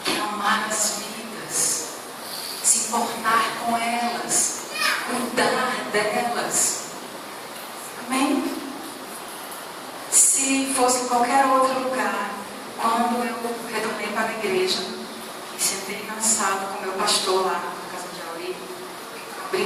Quer amar as vidas, se importar com elas, cuidar delas. Amém? Se fosse em qualquer outro lugar, quando eu retornei para a igreja e sentei na sala com meu pastor lá na casa de Auri, abri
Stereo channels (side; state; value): both; identical; correlation 1.00